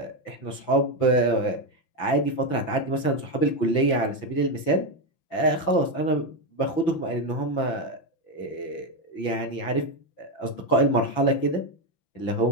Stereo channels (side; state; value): right; late; 6.0 ms